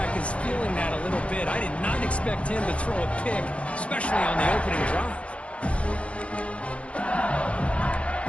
is feeling that a little bit. I did not expect him to throw a pick, especially on the opening drive.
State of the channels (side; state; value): right; late; 0.062 ms